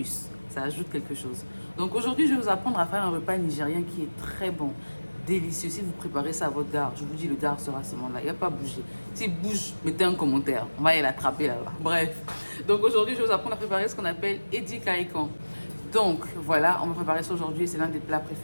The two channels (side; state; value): both; inverted; correlation -1.00